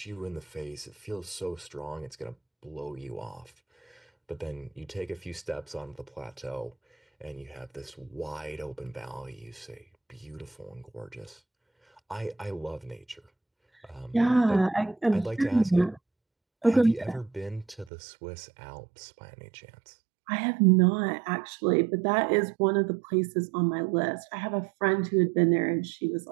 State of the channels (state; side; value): drops out; left; at 17.9 s